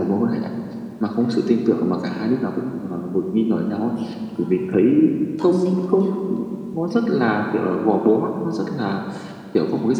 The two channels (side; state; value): both; identical; correlation 1.00